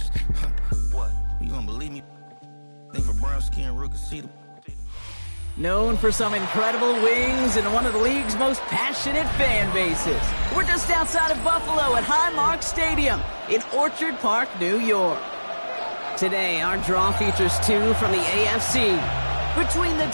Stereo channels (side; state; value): both; inverted; correlation -1.00